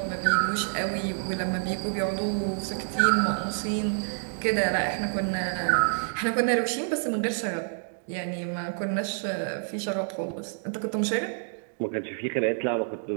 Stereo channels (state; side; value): silent; left; digital silence